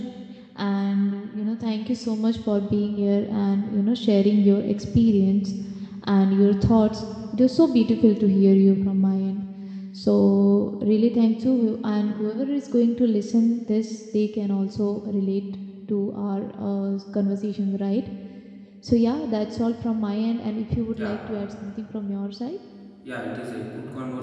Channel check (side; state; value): both; identical; correlation 1.00